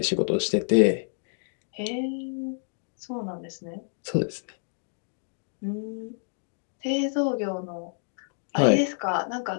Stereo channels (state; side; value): silent; right; 59 dB below the other